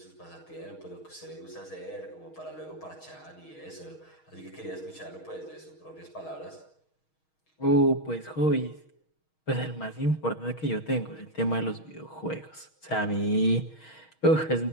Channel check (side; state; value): right; late; 6.4 ms